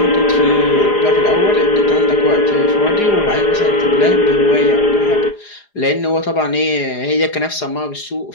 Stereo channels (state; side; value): late; right; 4.9 ms